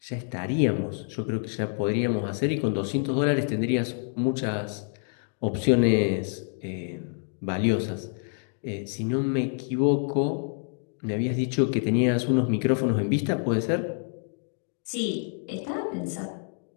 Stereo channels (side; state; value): right; silent; 56 dB below the other